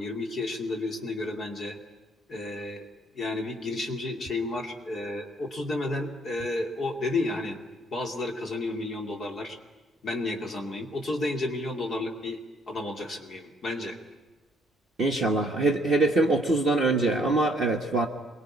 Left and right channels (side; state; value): both; normal; correlation 0.65